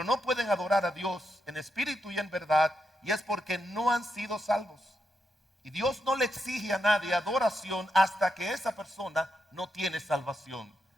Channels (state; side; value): normal; both; correlation 0.84